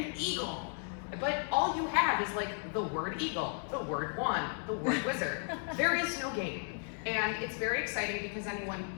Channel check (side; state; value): right; silent; 55 dB below the other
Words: eagle. But all you have is like the word eagle, the word wand, the word wizard. There is no game. And it's very exciting because anyone